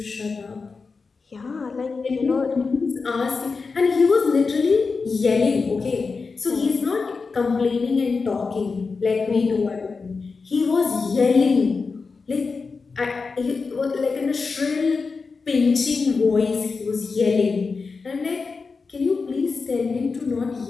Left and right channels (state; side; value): quieter; right; 4.6 dB